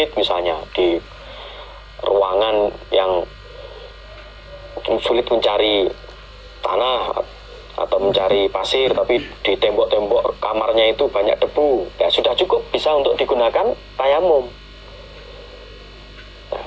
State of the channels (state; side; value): identical; both; correlation 1.00